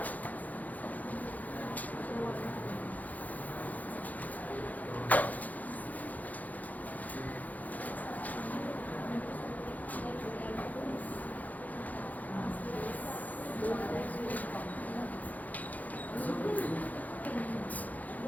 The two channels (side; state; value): right; late; 0.079 ms